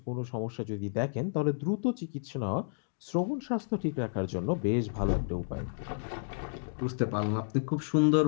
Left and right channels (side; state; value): right; silent; digital silence